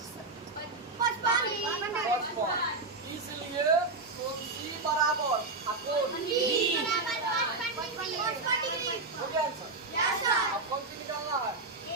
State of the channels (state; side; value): quieter; left; 3.5 dB